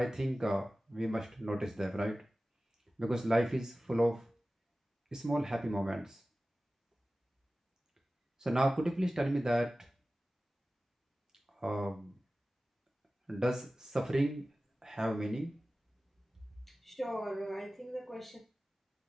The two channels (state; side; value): normal; both; correlation 0.96